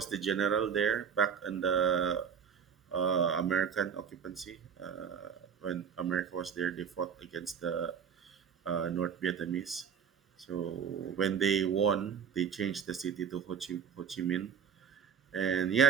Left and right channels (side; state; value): left; quieter; 7.2 dB